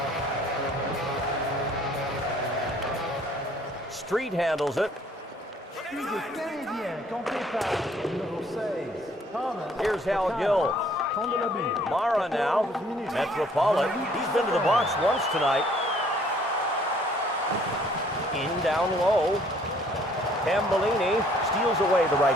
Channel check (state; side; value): normal; both; correlation 0.60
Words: Street handles it. Here's Hal Gill. Mara now. Metropolitan. He's been to the box once tonight. In down low. Tambellini steals away the